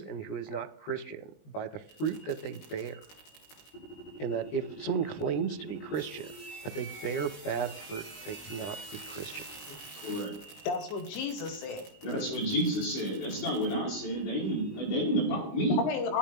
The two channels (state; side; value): late; right; 20 ms